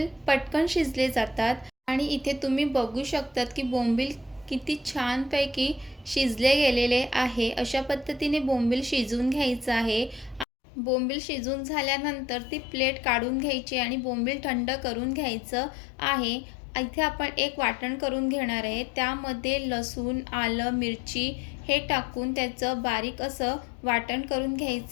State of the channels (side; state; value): right; drops out; at 10.5 s